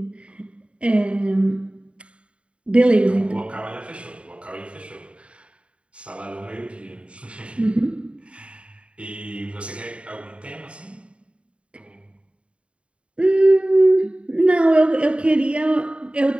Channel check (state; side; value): late; left; 0.059 ms